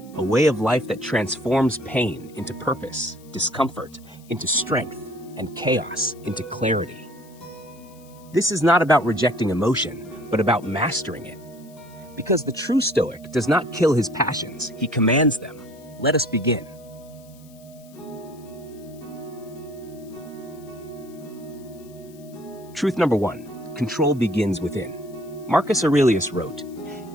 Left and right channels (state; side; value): noise; left; hiss, 26 dB below the sound